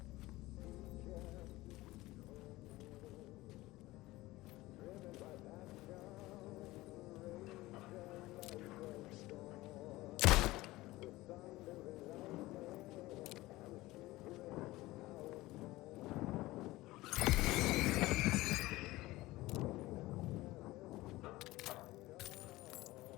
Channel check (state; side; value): quieter; right; 18.8 dB